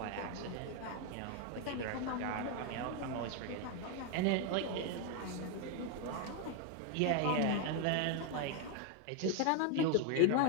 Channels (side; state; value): both; different; correlation 0.01